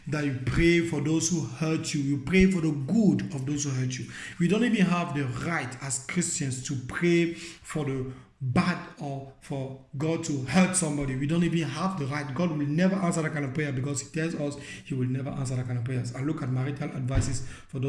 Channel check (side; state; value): both; identical; correlation 1.00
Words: That you pray for those who hurt you. You pray for the good of those who hurt you. We don't even have the right as Christians to pray for the bad or for God to hurt somebody. We don't even have the right. God will never answer that kind of prayer, because He tells us He will never answer that kind of prayers. And look at marital advices for